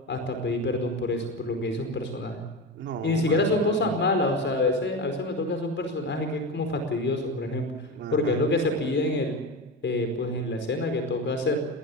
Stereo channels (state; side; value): normal; both; correlation 0.22